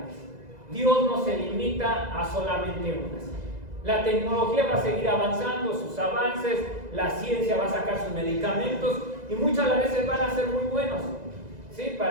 Dios no se limita a solamente unas. La tecnología va a seguir avanzando, sus avances, la ciencia va a sacar sus medicamentos y muchas veces van a ser muy buenos. ¿Sí?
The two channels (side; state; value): left; late; 2.0 ms